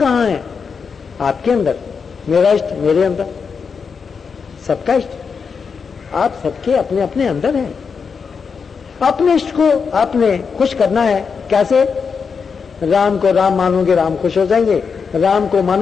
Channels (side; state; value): right; quieter; 5.7 dB